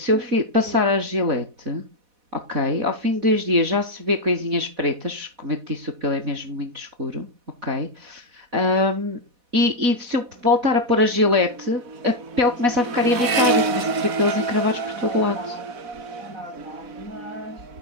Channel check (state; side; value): late; left; 4.1 ms